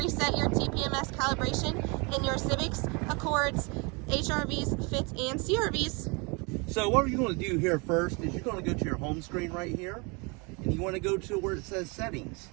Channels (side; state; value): left; quieter; 30.2 dB